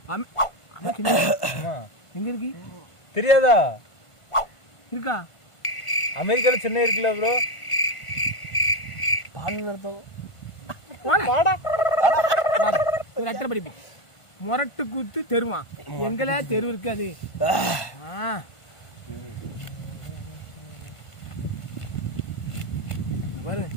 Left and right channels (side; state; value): right; late; 1.5 ms